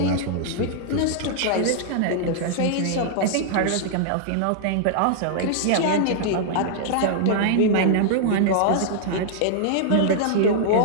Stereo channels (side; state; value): both; different; correlation -0.01